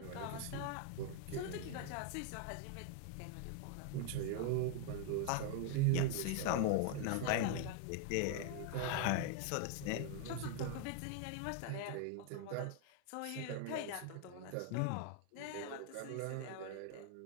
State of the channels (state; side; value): different; both; correlation 0.00